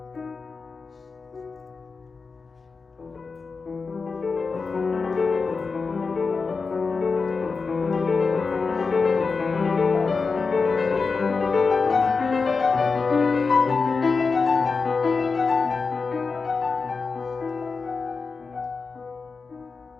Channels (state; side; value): quieter; right; 4.6 dB